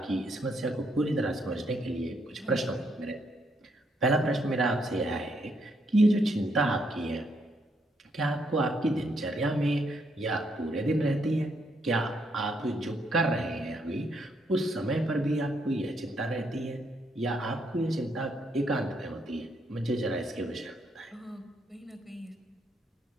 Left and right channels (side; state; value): both; normal; correlation 0.75